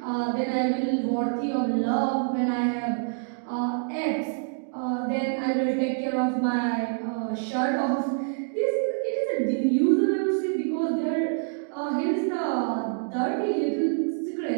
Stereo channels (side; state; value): left; silent; digital silence